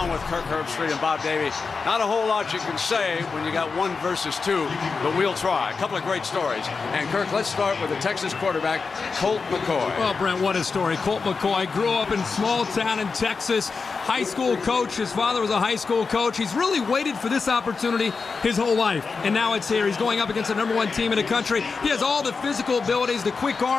with Kirk Herbstreit and Bob Davie. Not a whole lot you can say when you got 1 versus 2, but we'll try. A couple of great stories. And, Kirk, let's start with the Texas quarterback, Colt McCoy. Well, Brent, what a story. Colt McCoy grew up in a small town in Texas, high school coach. His father was a high school coach. He's really waited for this opportunity his whole life, and now it's here. He's going up against the #1 team in the country. He has all the physical abilities, the quick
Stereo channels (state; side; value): quieter; right; 4.8 dB